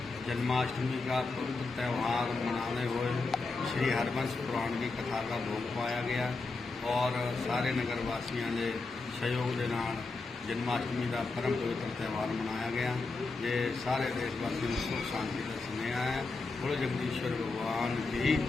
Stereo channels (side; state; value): right; quieter; 3.8 dB